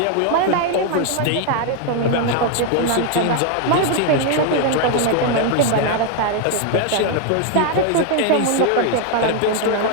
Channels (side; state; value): both; different; correlation 0.00